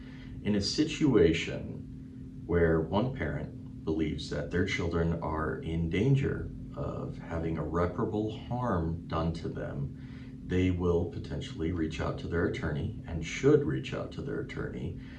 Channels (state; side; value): identical; both; correlation 1.00